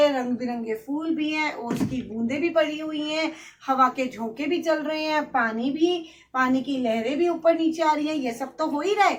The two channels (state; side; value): identical; both; correlation 1.00